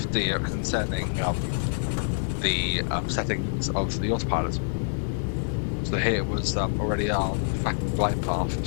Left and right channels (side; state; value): right; silent; 61 dB below the other